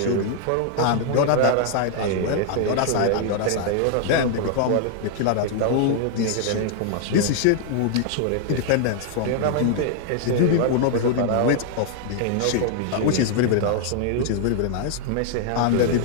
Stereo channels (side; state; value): both; different; correlation -0.01